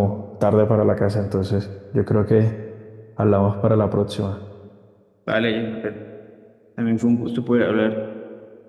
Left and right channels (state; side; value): identical; both; correlation 1.00